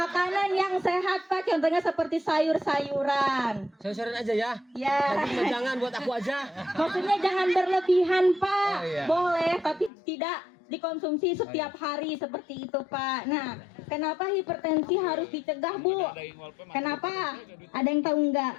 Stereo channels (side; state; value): right; drops out; at 9.9 s